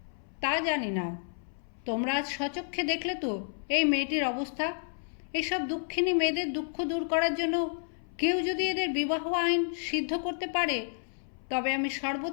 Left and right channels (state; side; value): silent; right; 57 dB below the other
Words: তা জানি না। তোমরা আজ স্বচক্ষে দেখলে তো এই মেয়েটির অবস্থা। এসব দুঃখিনী মেয়েদের দুঃখ দূর করার জন্য কেউ যদি এদের বিবাহ আইন সিদ্ধ করতে পারে, তবে আমি